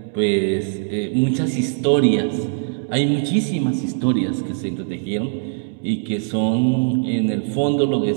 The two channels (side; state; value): left; silent; digital silence